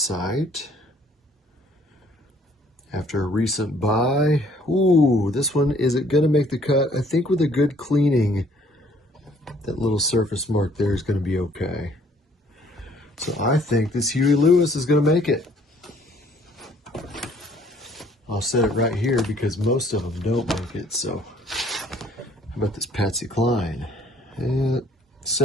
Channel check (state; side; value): normal; both; correlation 0.60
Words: After a recent buy. Ooh, this one, is it going to make the cut? I think with a good cleaning, that little surface mark there is going to be okay. So I think this Huey Lewis is going to make it. I'll set it right here because most of them don't make it. So how about this Patsy Cline?